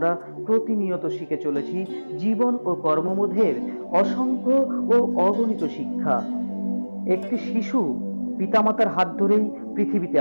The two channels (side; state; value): both; inverted; correlation -1.00